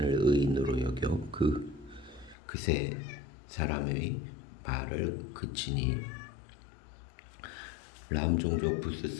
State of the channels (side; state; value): right; drops out; at 2.4 s